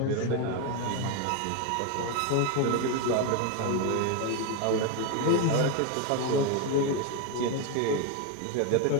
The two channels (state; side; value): different; both; correlation 0.02